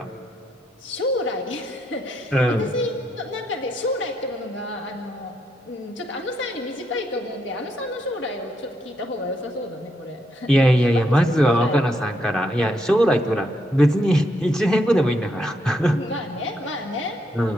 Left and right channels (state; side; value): normal; both; correlation 0.77